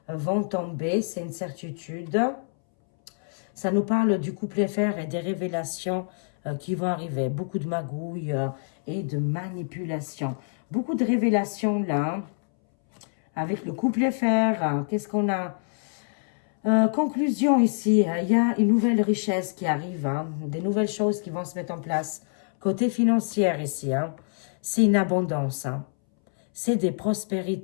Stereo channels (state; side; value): silent; right; 61 dB below the other